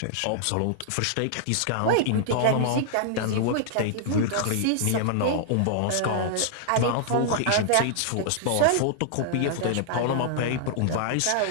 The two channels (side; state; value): both; different; correlation -0.01